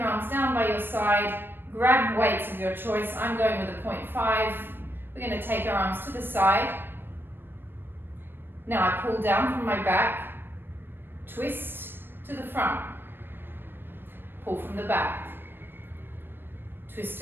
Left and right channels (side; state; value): left; late; 0.098 ms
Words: arms down by your side, grab weights of your choice. I'm going with a 0.5. We're going to take our arms to the side. Now I pull down from my back, twist to the front, pull from the back, twist